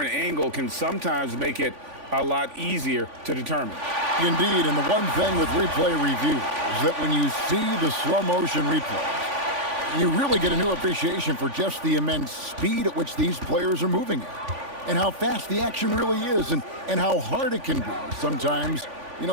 angle can sometimes make it a lot easier to determine. Indeed, and the one thing with replay review is that when you see the slow motion replays, you really get a new appreciation for just the immense speed at which these players are moving at, and how fast the action really is, and how hard it can be sometimes, you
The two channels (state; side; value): late; left; 3.5 ms